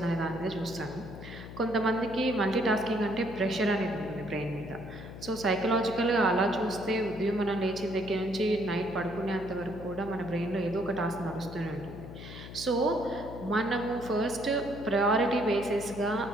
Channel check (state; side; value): noise; left; hum, 12 dB below the sound